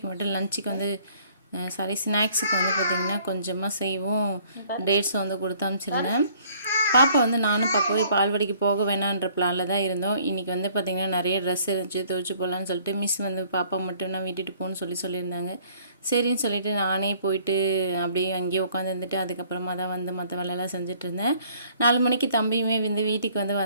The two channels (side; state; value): both; inverted; correlation -0.59